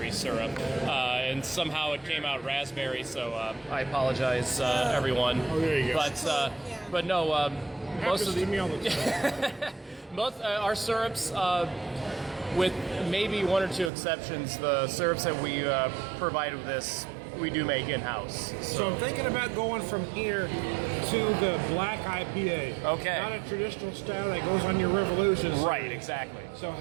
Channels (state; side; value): drops out; left; at 13.9 s